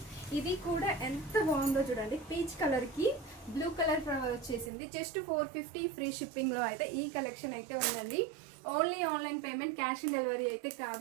ఇది కూడా ఎంత బాగుందో చూడండి. పీచ్ కలర్కి బ్లూ కలర్ ఫ్లవర్ వచ్చేసింది. జస్ట్ 450 ఫ్రీ షిప్పింగ్లో అయితే ఈ కలెక్షన్ అయితే ఉందండి. Only online payment, cash on delivery అయితే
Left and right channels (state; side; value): drops out; left; at 4.7 s